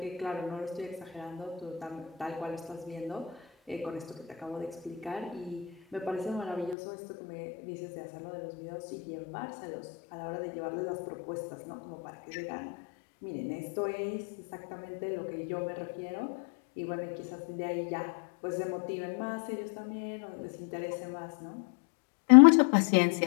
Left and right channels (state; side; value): drops out; right; at 6.8 s